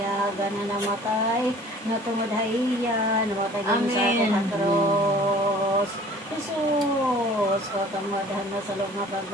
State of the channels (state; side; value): normal; both; correlation 0.49